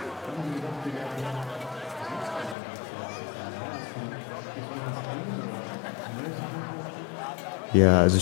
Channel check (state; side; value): drops out; right; at 2.6 s